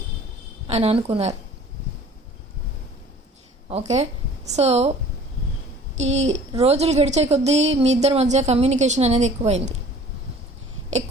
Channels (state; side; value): normal; both; correlation 0.49